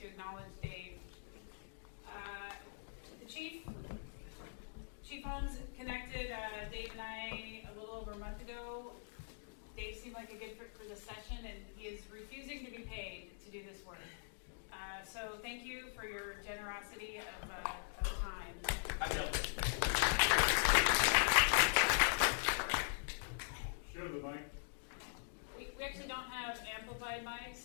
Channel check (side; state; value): right; silent; digital silence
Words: acknowledge Dave. The Chief Holmes connected Dave and I a little over a month ago. Dave seemed like a good fit for the session, and he is refusing to be paid to do this work. So thank you for your generosity of time. I know. Show the mic. We actually don't have amplified